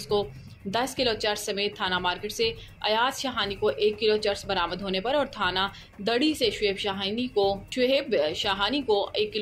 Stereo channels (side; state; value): both; identical; correlation 1.00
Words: को 10 किलो चर्स समेत थाना मार्केट से अयाज शाहानी को 1 किलो चर्स बरामद होने पर और थाना दड़ी से शुएब शाहानी को 1